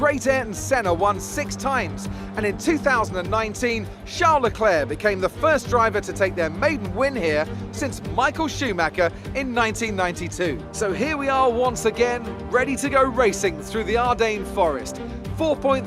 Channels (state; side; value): identical; both; correlation 1.00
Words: Ayrton Senna won 6 times, and in 2019, Charles Leclerc became the first driver to take their maiden win here since Michael Schumacher in 1992. So here we are once again, ready to go racing through the Ardennes forest.